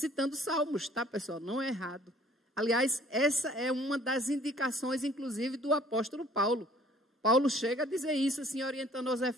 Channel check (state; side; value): normal; both; correlation 0.56